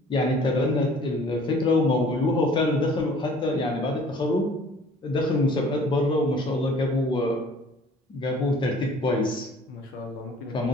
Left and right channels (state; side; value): normal; both; correlation 0.52